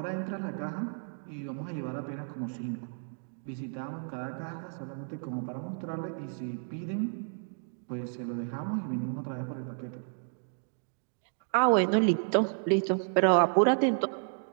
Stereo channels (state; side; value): silent; left; 57 dB below the other